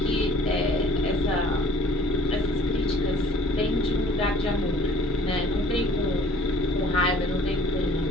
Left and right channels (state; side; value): normal; both; correlation 0.52